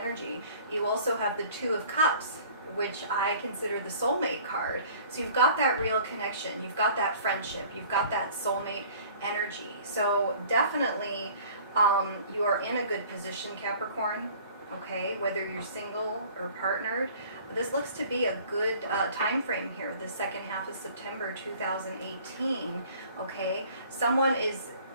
You also have the Two of Cups, which I consider the soulmate card. So you've got that real connection, you've got that friendship, you've got that soulmate energy. So definitely you are in a good position, Capricorn, okay, whether you're single or partnered. This looks to be a good time frame here, the second half of September 2018, okay? Someone is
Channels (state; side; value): inverted; both; correlation -0.50